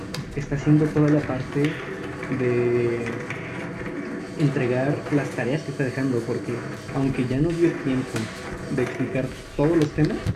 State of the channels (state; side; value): identical; both; correlation 1.00